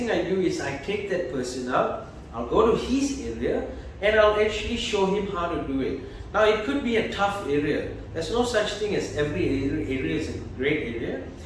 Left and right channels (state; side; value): identical; both; correlation 1.00